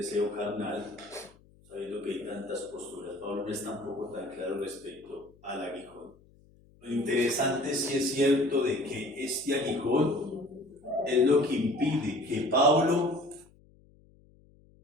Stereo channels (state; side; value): noise; left; hum, 28 dB below the sound